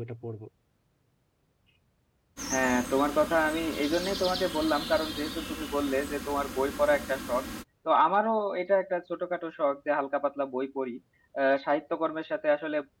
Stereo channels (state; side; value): identical; both; correlation 1.00